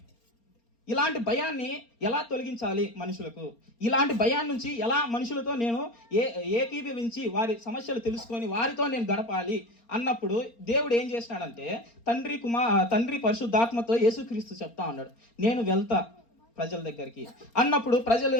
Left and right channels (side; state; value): right; late; 4.3 ms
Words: ఇలాంటి భయాన్ని ఎలా తొలగించాలి మనుషులకు? ఇలాంటి భయాన్ని నుంచి ఎలా మనుషులతో నేను ఏకీభవించి వారి సమస్యలు తెలుసుకొని వారితో నేను గడపాలి అన్నప్పుడు దేవుడు ఏం చేసినాడంటే తండ్రి పరిశుద్ధాత్మతో యేసుక్రీస్తు చెప్తా ఉన్నాడు, నేను వెళ్తా ప్రజల దగ్గరికి అన్నప్పుడు ప్రజలు